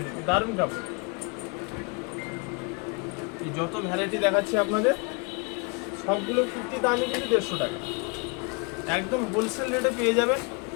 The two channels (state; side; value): quieter; right; 31.8 dB